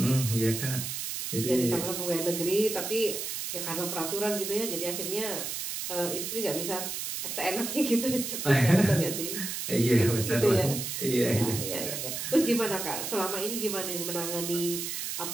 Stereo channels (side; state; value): right; noise; hiss, 4 dB below the sound